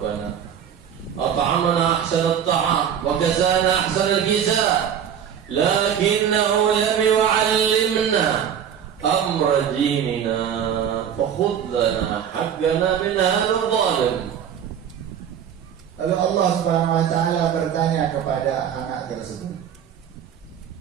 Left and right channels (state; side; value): quieter; left; 8.7 dB